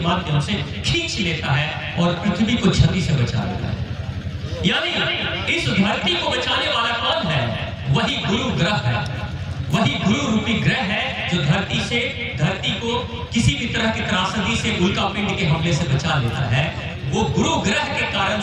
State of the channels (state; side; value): identical; both; correlation 1.00